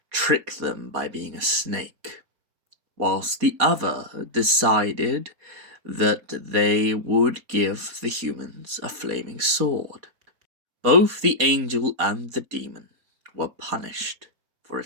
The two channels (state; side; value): late; left; 4.2 ms